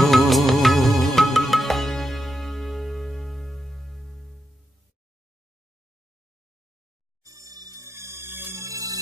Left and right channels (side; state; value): both; normal; correlation 0.85